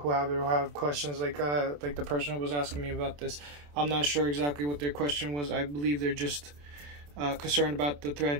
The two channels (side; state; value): left; late; 27 ms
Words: have it or have questions like the person who was asking me about this. I'm not sure exactly what their question was. I believe they're just concerned about the